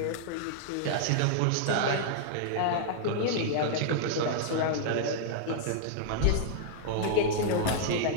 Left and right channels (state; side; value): different; both; correlation -0.01